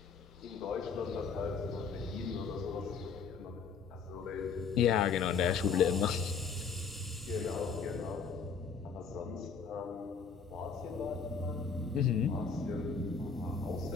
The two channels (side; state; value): right; quieter; 5.6 dB